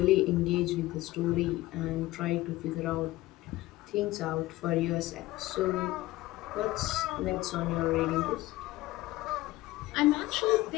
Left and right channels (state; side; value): quieter; right; 17.9 dB